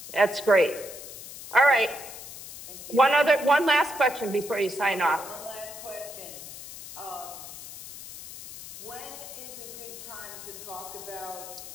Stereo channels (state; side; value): noise; left; hiss, 13 dB below the sound